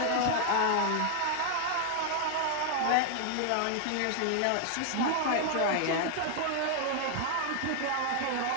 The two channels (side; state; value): both; different; correlation 0.00